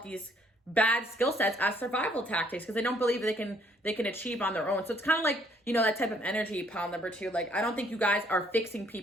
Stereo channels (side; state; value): both; normal; correlation 0.65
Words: these bad skill sets as survival tactics because they don't believe they can achieve on their own. So it's kind of like, you know, that type of energy, pile number 2. Like, I don't think you guys are fixing